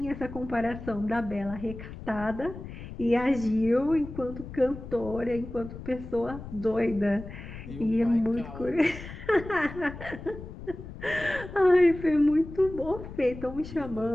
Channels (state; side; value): noise; left; rumble, 12 dB below the sound